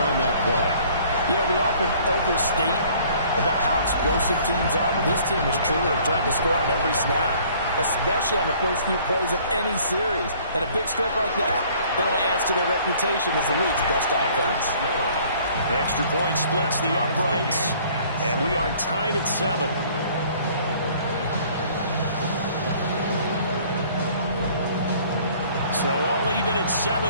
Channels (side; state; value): both; inverted; correlation -0.56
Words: that play. Yeah, we often overstate about how explosive teams are, but this team is truly a threat to score on every snap, especially on the first few plays of any series. And a big stroke like that only adds to their reputation as the league's best offense. The extra point splits the uprights, and we are tied at 7. So all even at